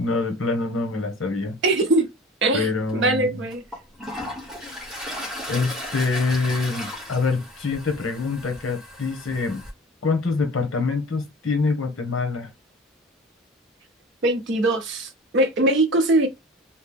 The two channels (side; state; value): both; normal; correlation 0.41